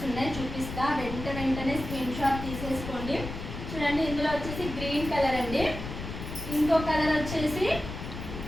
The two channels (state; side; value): noise; left; rumble, 8 dB below the sound